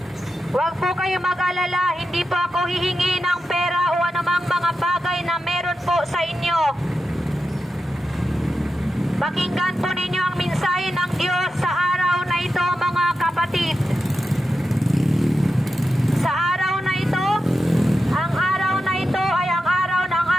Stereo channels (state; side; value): normal; both; correlation 0.90